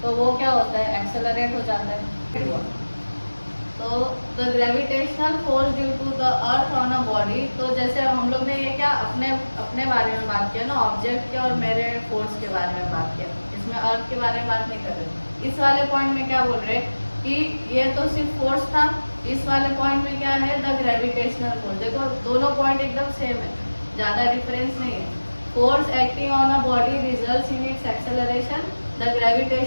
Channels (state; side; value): inverted; both; correlation -1.00